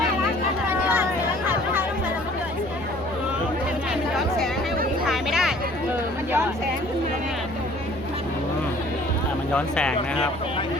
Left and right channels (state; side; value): normal; both; correlation 0.53